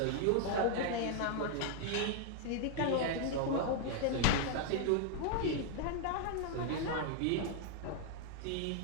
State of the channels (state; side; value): different; both; correlation 0.00